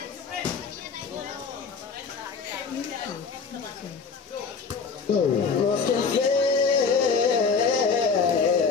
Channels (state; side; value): quieter; right; 5.3 dB